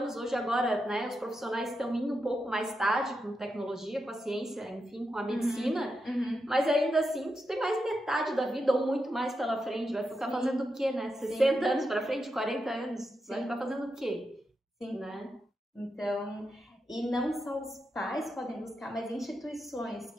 hoje agora, né, os profissionais estão indo um pouco mais tarde com tecnologia, com a ciência, enfim, com a medicina, mas ainda assim, tu tem mais metade da vida ou muito mais pela frente, vai ficar fazendo o quê, né? 60 anos pra frente, 40 anos, vai ficar fazendo o quê? Sim, né? Então... E não só os pais podem buscar, mas instituições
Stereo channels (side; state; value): both; normal; correlation 0.86